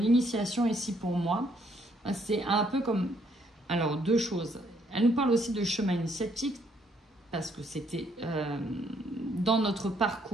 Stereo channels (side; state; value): both; normal; correlation 0.69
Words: ici pour moi, c'est un peu comme... Alors, deux choses. Elle nous parle aussi de chemin initiatique, parce que c'était dans notre